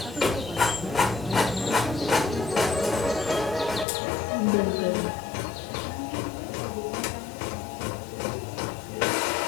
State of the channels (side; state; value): right; drops out; at 3.9 s